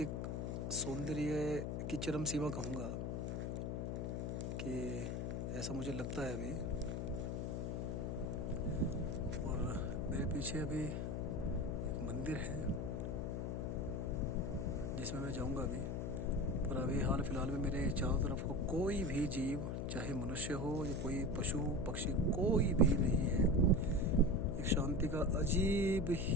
सौंदर्य की चरम सीमा कहूँगा कि ऐसा मुझे लगता है अभी। और मेरे पीछे अभी एक मंदिर है जिसमें मैं जाऊंगा अभी। पर अभी हाल फिलहाल में मेरे चारों तरफ को कोई भी जीव, चाहे मनुष्य हो या कोई पशु पक्षी, कोई भी नहीं है। एक शांति का अजीब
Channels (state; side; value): noise; left; hum, 2 dB below the sound